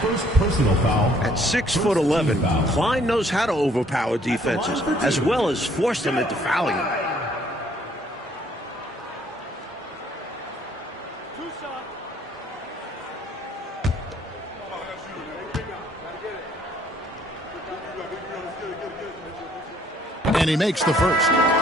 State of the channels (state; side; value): normal; both; correlation 0.62